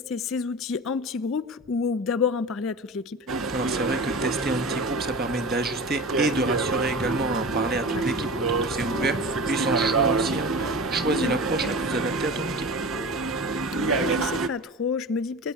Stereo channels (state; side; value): normal; both; correlation 0.32